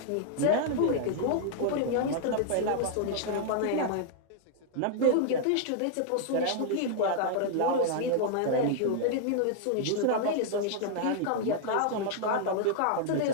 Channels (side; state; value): both; different; correlation -0.01